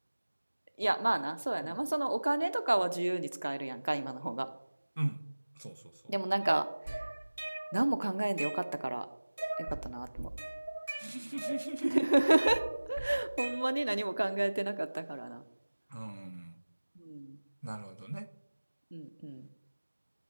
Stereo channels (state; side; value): inverted; both; correlation -1.00